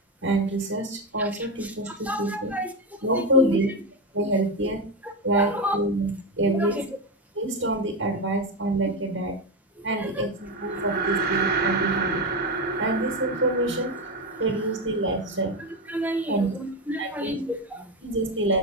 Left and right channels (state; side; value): normal; both; correlation 0.13